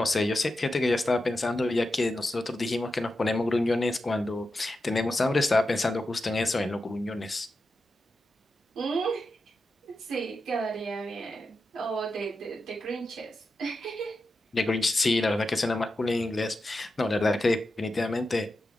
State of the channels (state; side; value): normal; both; correlation 0.90